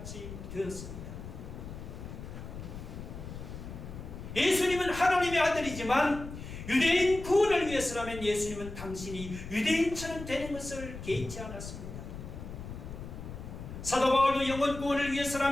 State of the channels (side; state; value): left; noise; rumble, 10 dB below the sound